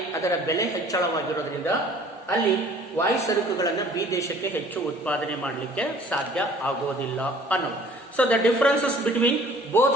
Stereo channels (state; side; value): normal; both; correlation 0.52